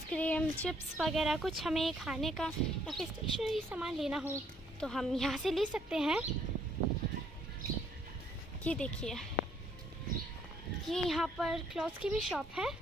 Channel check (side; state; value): both; normal; correlation 0.66